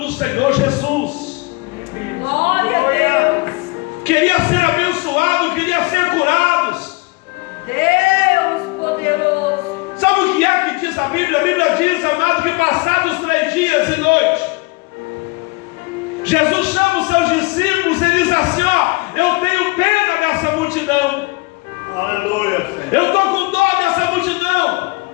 do Senhor Jesus. Glória a Deus. Queria ser abençoado, queria ser curados. Deus poderoso. Sabe o que é que diz a Bíblia? A Bíblia diz, amado, que passados 3 dias e noites, Jesus chama os seus discípulos e diz assim: ó, eu tenho pena dessa multidão. Aleluia, Senhor. Eu estou com dó dessa multidão.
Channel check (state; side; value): quieter; right; 25.9 dB